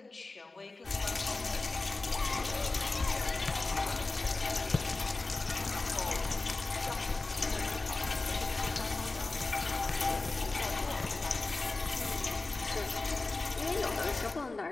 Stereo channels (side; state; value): right; quieter; 3.4 dB